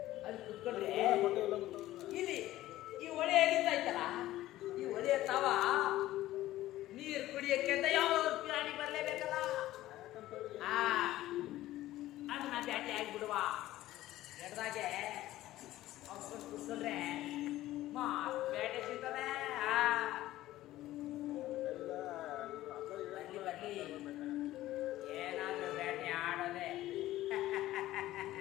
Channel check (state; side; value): quieter; right; 15.3 dB